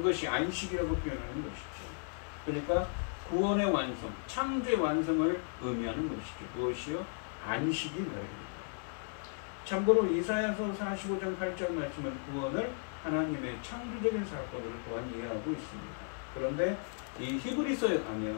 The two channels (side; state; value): right; silent; 54 dB below the other